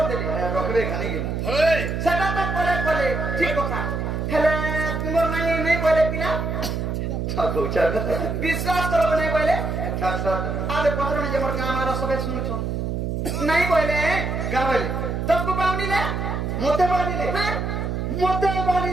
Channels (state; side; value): noise; right; hum, 2 dB below the sound